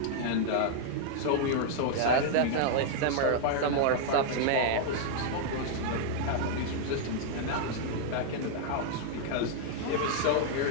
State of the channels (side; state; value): both; different; correlation -0.01